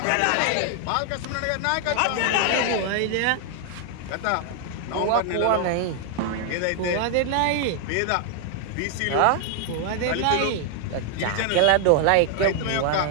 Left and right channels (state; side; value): different; both; correlation 0.00